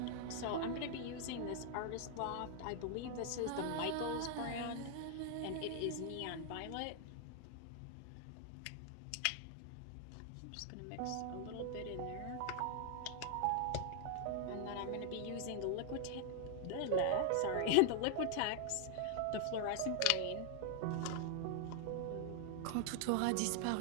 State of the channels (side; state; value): both; different; correlation -0.01